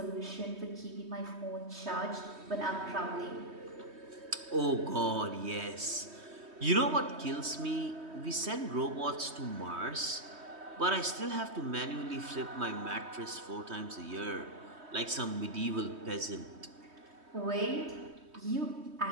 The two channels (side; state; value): left; late; 3.2 ms